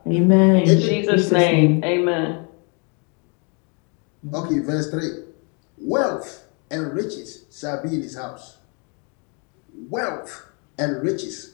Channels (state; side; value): quieter; right; 35.5 dB